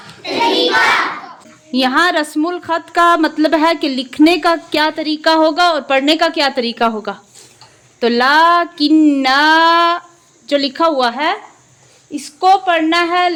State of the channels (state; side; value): identical; both; correlation 1.00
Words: तरीका। यहाँ रस्मुल खत का मतलब है कि लिखने का क्या तरीका होगा और पढ़ने का क्या तरीका होगा। तो लाकिन्ना जो लिखा हुआ है इसको पढ़ना है